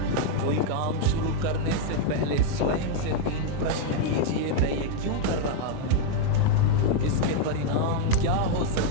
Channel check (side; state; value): both; different; correlation 0.00